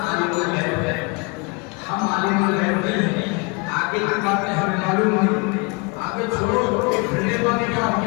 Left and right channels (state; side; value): quieter; right; 29.7 dB